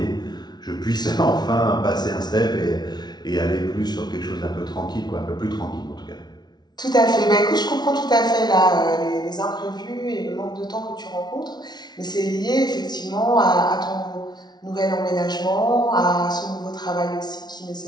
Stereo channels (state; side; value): late; right; 0.20 ms